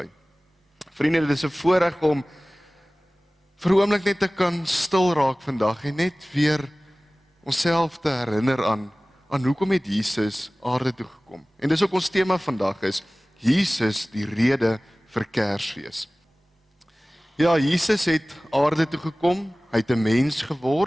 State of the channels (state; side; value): normal; both; correlation 0.98